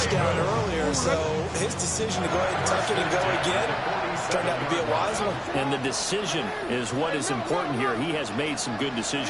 earlier, so his decision to go ahead and tuck it and go again turned out to be a wise one. And the decision is what is important here. He has made some good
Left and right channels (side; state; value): both; identical; correlation 1.00